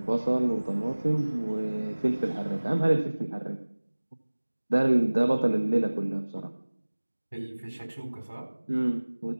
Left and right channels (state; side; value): inverted; both; correlation -1.00